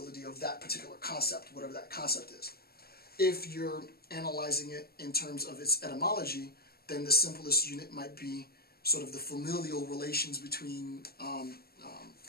of that particular concept, whatever that concept is. If you're analyzing it in terms of its etymology, then the simplest unit might be sort of the familial relations between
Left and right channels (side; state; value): right; late; 0.45 ms